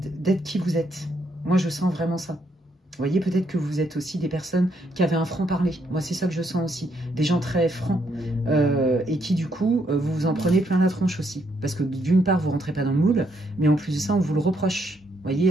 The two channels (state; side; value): normal; both; correlation 0.74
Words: d'être qui vous êtes. Moi, je sens vraiment ça. Vous voyez, peut-être que vous êtes aussi des personnes qui avaient un franc-parler. Moi, c'est ça que je sens aussi. Des gens très francs. Et qui, du coup, vous vous en prenez plein la tronche aussi. Parce que, d'une part, vous ne rentrez pas dans le moule. Mais en plus de ça, on vous le reproche. Vous